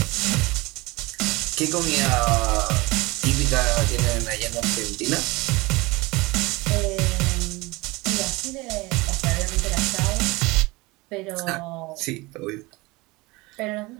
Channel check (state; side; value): quieter; left; 23.2 dB